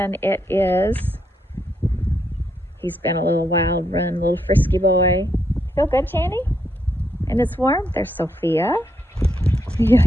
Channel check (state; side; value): normal; both; correlation 0.78